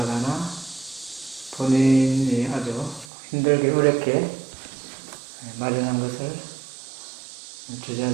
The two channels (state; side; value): drops out; left; at 3.1 s